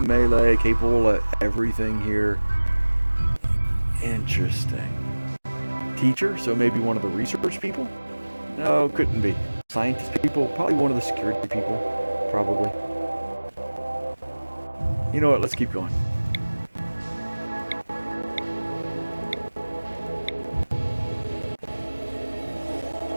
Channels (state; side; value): inverted; both; correlation -1.00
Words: capable of everything here. Interesting. Teacher, so maybe one of the research people? No, couldn't be. Scientist people? Probably one of the security people. Probably. You know what? Let's keep going.